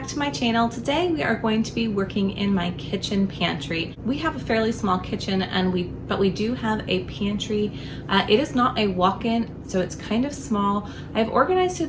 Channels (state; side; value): identical; both; correlation 1.00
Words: to my channel. Today we are going to be working in my kitchen pantry. We have a fairly small kitchen but we do have a pantry. It is not a walk-in, so it's kind of small. I've organized